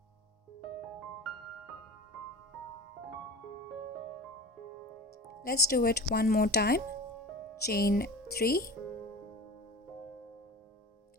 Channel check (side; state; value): both; normal; correlation 0.34